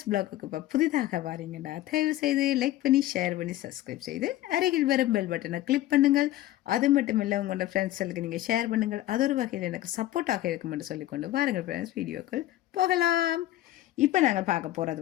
பிளாக்குக்கு இப்போ புதிதாக வாரீங்கடா, தயவு செய்து லைக் பண்ணி ஷேர் பண்ணி சப்ஸ்கிரைப் செய்து அருகில் வரும் பெல் பட்டனை கிளிக் பண்ணுங்கள். அது மட்டும் இல்லை, உங்களோட ஃப்ரெண்ட்ஸுக்கு நீங்கள் ஷேர் பண்ணுங்கள். அது ஒரு வகையில் எனக்கு சப்போர்ட்டாக இருக்கும் என்று சொல்லிக்கொண்டு வாருங்கள் ஃப்ரெண்ட்ஸ், வீடியோக்கள் போகலாம். இப்போ நாங்கள் பார்க்க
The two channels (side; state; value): right; quieter; 14.9 dB